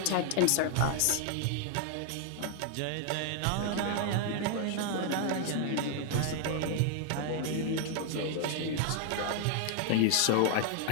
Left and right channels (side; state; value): both; different; correlation 0.00